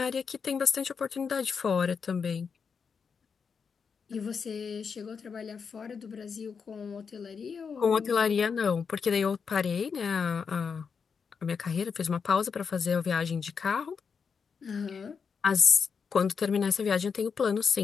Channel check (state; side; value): quieter; right; 6.0 dB